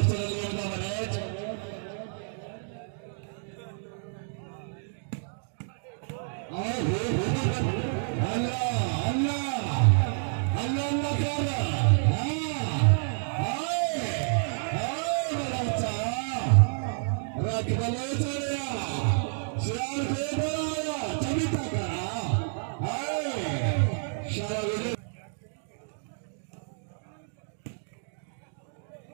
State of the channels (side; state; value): left; silent; digital silence